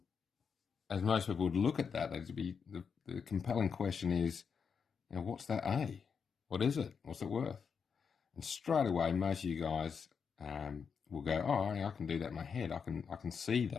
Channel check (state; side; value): quieter; right; 6.2 dB